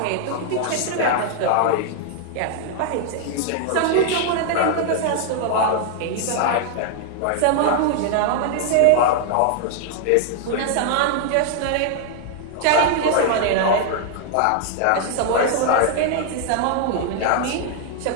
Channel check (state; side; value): different; both; correlation 0.00